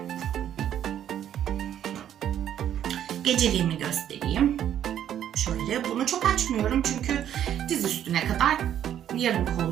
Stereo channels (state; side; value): quieter; left; 10.4 dB